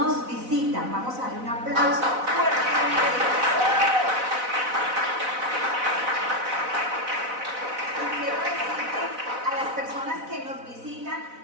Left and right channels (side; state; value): left; late; 4.0 ms